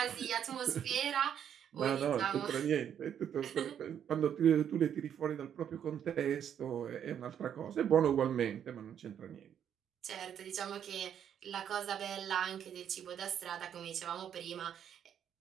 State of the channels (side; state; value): left; quieter; 9.0 dB